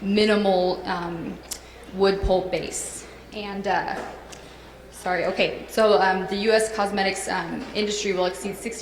minimal wood pulp base. And the U.S. cosmetics industry will exceed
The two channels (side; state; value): both; identical; correlation 1.00